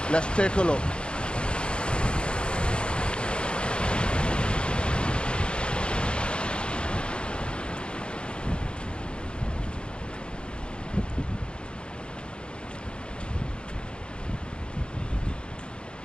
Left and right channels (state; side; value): late; right; 0.054 ms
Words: Let's take a look.